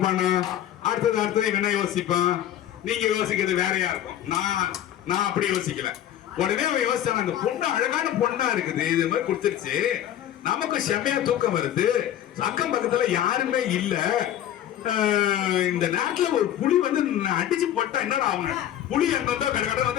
அடுத்தது இவன் என்ன யோசிப்பான்? நீங்க யோசிக்கிறது வேறையா இருக்கும். நான் அப்படி யோசிக்கல. உடனே அவன் யோசிச்சான், அந்த பொண்ணு அழகான பொண்ணா இருக்குது, இது மாதிரி கொடுத்துருச்சு, நமக்கு செம்மையா தூக்கம் வருது, அக்கம் பக்கத்துல யாருமே இல்ல, இந்த நேரத்துல ஒரு புலி வந்து அடிச்சு போட்டா என்னடா அவங்க புலி அங்க கடை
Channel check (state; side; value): quieter; right; 11.4 dB